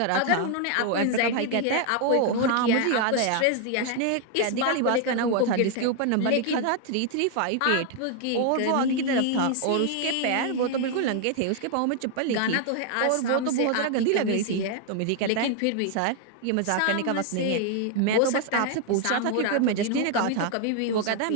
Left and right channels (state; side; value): different; both; correlation 0.00